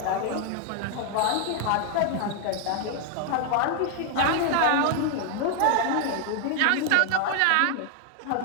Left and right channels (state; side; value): different; both; correlation 0.00